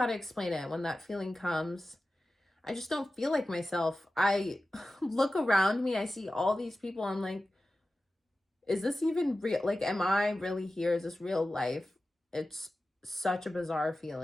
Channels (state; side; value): normal; both; correlation 0.95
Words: to explain it. When that feeling comes, I just don't feel like myself. I look around me, I see all these people, I'm like, is this even real? Like, am I really here? Is this real life? It's such a bizarre